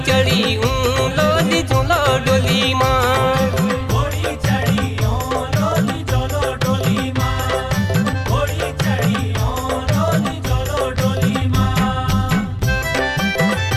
चढ़ी लोली चुलो डोली माँ।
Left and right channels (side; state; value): both; identical; correlation 1.00